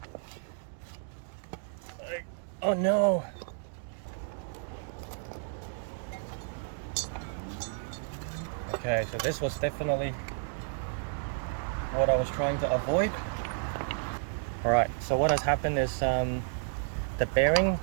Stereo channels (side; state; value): left; silent; digital silence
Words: Oh no! Okay, so this was definitely what I was trying to avoid. Alright, so what has happened is the bearing